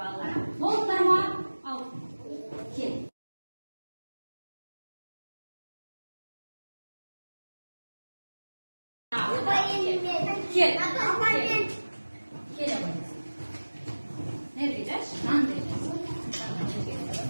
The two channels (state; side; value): inverted; both; correlation -1.00